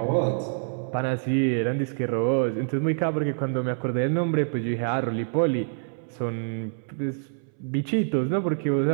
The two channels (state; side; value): silent; left; 61 dB below the other